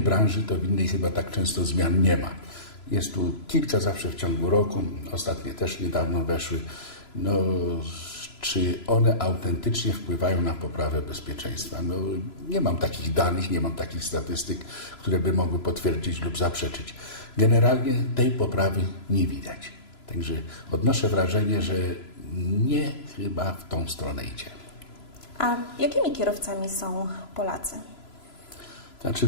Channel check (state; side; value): late; right; 3.0 ms